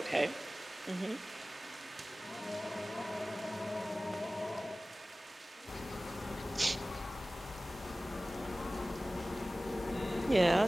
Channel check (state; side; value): normal; both; correlation 0.97